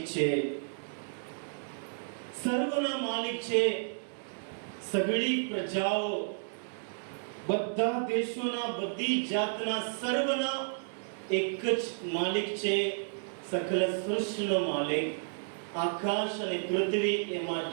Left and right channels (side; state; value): left; silent; digital silence